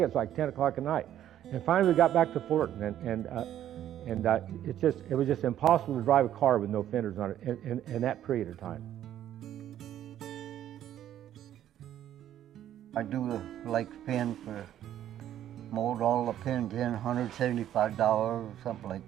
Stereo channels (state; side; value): quieter; left; 11.4 dB